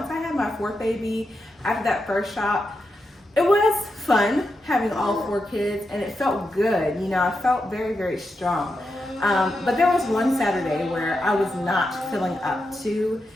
I had my fourth baby, after that first shop, it was fun having all 4 kids and it felt good. You know, I felt very, very strong. But there was one Saturday where I was not feeling up to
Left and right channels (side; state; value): both; normal; correlation 0.87